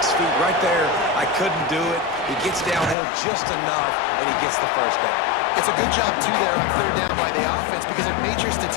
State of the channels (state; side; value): drops out; right; at 3.0 s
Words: feet right there. I couldn't do it. He gets downhill just enough, and he gets the first down. It's a good job, too, there on third down by the offense because a major